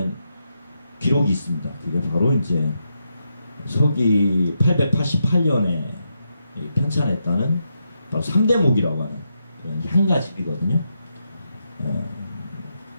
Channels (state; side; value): inverted; both; correlation -0.83